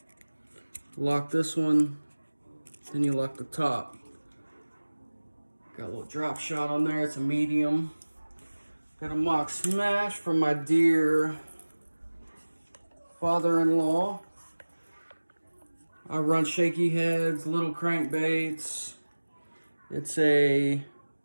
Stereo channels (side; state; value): both; inverted; correlation -1.00